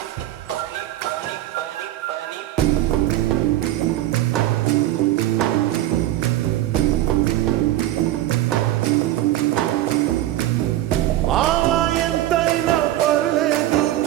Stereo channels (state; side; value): quieter; left; 14.4 dB